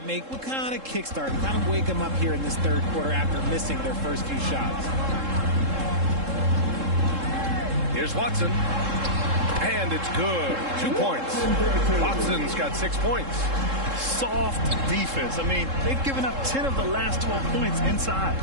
make will kind of kickstart and kind of wake them up here in this third quarter after missing their first few shots. Here's Watson. And it's good. 2 points. Watson's got 6 points. Soft defense. I mean, they've given up 10 of the last 12 points inside.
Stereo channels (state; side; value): late; left; 3.7 ms